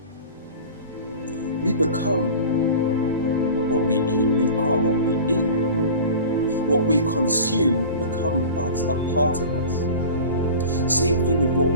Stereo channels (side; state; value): both; inverted; correlation -0.37